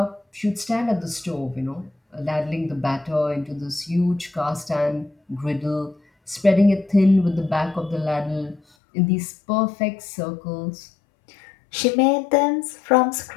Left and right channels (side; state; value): right; drops out; at 8.6 s